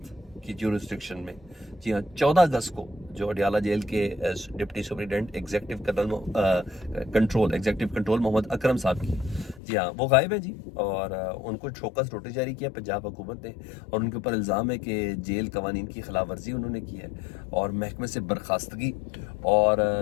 की ज्यूरिस्डिक्शन में। जी हाँ, 14 अगस्त को जो अडियाला जेल के deputy superintendent executive control Mohammad Akram साहब की, जी हाँ, वो गायब है जी। और उनको शोकस नोटिस जारी किया पंजाब हुकूमत ने और उनके ऊपर इल्ज़ाम है कि जेल कवानीन की खिलाफ वर्जी उन्होंने की है और महकमे से बर्खास्तगी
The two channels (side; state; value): right; drops out; at 9.6 s